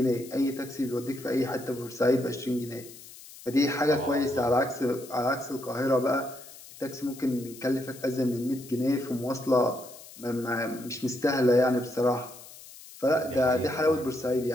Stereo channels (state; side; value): noise; left; hiss, 18 dB below the sound